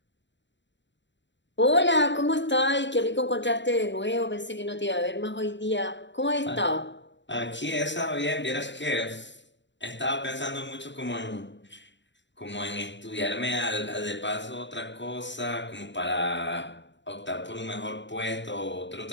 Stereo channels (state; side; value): late; right; 0.53 ms